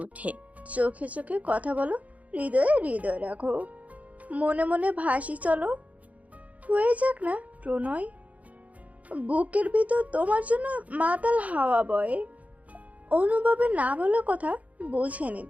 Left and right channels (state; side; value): late; left; 0.070 ms